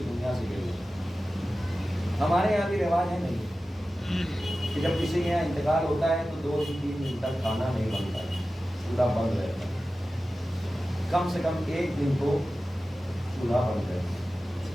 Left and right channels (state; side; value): normal; both; correlation 0.95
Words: دنیا سے گئے. ہمارے یہاں بھی رواج ہے نہیں کہ جب کسی کے یہاں انتقال ہوتا ہے تو 2 سے 3 دن تک کھانا نہیں بنتا ہے، چولہا بند رہتا ہے. کم سے کم 1 دن تو چولہا بند رہتا ہے.